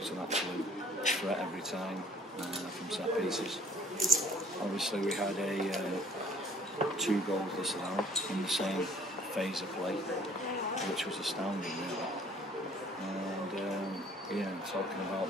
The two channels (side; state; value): both; normal; correlation 0.55